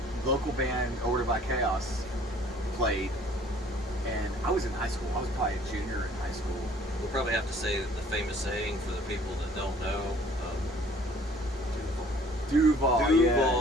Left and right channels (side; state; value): both; normal; correlation 0.55